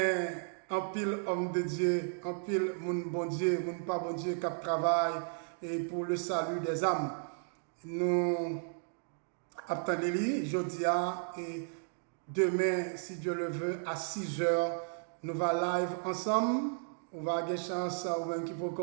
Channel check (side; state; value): left; silent; digital silence